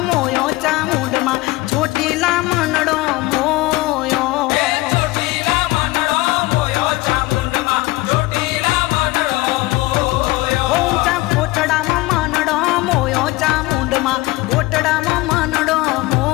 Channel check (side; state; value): right; quieter; 20.0 dB